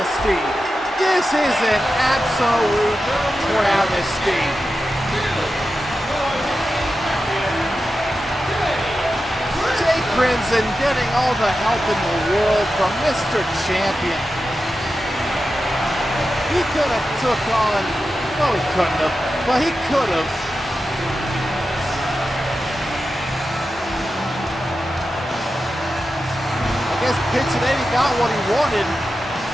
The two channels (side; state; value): both; normal; correlation 0.91